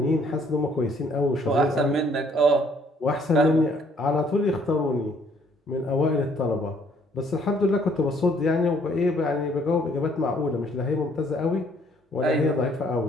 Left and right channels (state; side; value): normal; both; correlation 0.64